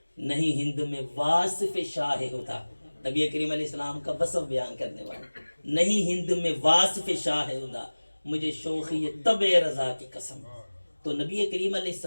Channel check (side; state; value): both; inverted; correlation -1.00